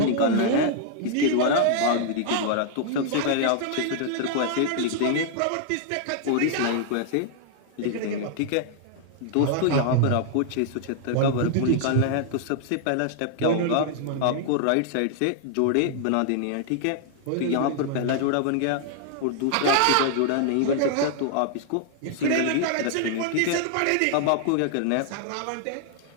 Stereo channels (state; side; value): different; both; correlation 0.00